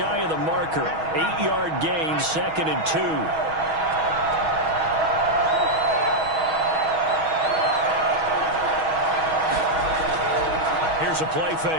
of the marker. 8-yard gain, 2nd and 2. Here's a play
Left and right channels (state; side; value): late; left; 6.2 ms